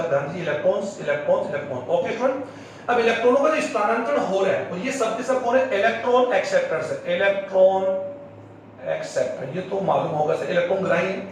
ध्यान दीजिए, electrons electrons electron, okay student. अब इलेक्ट्रॉनों का जो स्थानांतरण हो रहा है और ये सब के सब कौन है, इलेक्ट्रॉन एक्सेप्टर्स है, इलेक्ट्रॉन एक्सेप्टर, ये तो मालूम होगा सर, इलेक्ट्रॉन ग्राही।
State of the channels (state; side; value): identical; both; correlation 1.00